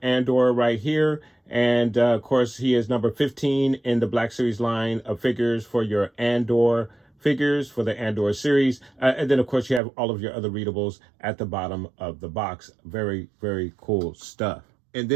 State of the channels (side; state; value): left; drops out; at 9.8 s